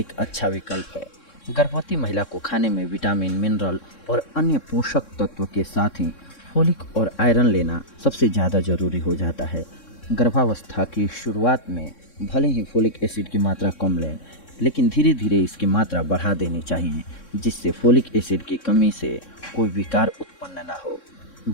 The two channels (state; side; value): late; right; 3.6 ms